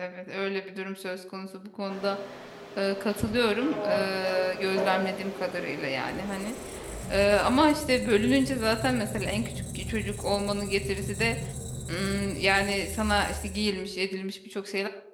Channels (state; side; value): identical; both; correlation 1.00